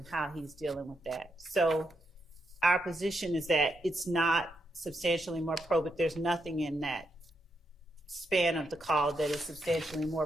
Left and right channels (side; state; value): both; normal; correlation 0.82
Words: how he's dealing with that. So our position is that it's not substantially more probative. There's nothing in that span of the call that is substantially more